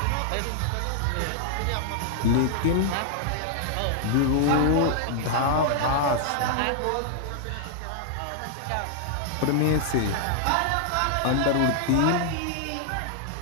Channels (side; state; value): both; different; correlation -0.01